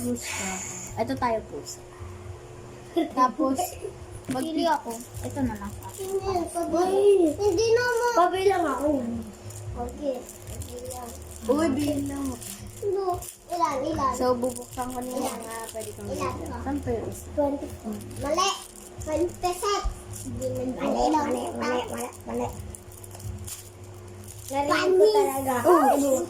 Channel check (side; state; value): both; identical; correlation 1.00